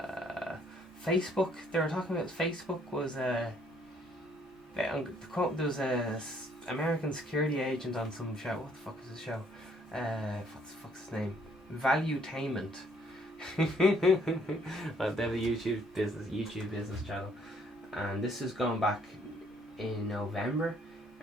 Facebook. They were talking about Facebook was there was a American security agent on some show. What the fuck was the show? What the fuck's his name? Valuetainment. Well, they have a YouTube business channel, and this is going back in November,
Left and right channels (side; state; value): both; normal; correlation 0.64